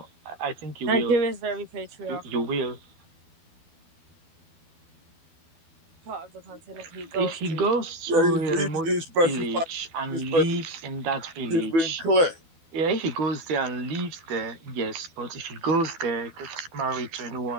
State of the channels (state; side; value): late; left; 12 ms